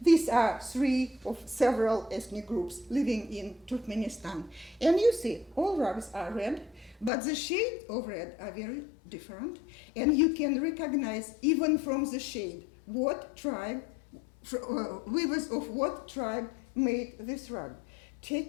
These are three of several ethnic groups living in Turkmenistan. And you see, all rugs are red, but the shades of red are very different. And you can recognize, even from the shade, what tribe, weavers of what tribe made this rug.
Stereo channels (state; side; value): drops out; right; at 7.1 s